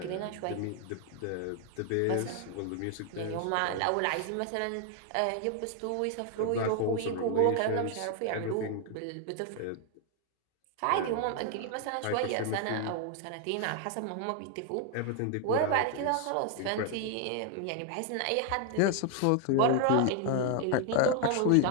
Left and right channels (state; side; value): different; both; correlation 0.00